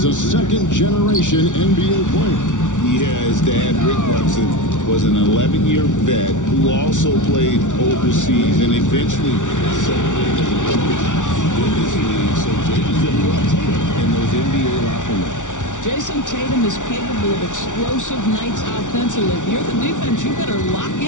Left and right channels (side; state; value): right; late; 0.87 ms